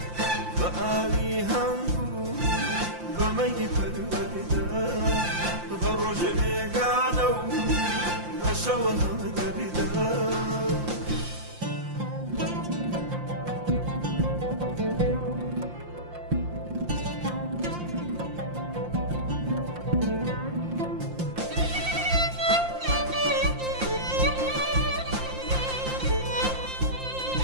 بقالي هنقو بمي بالوردة بروج بيقانو بشوها مدردة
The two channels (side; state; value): left; late; 5.7 ms